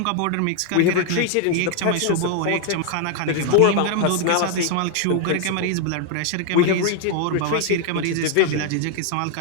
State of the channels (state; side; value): different; both; correlation 0.00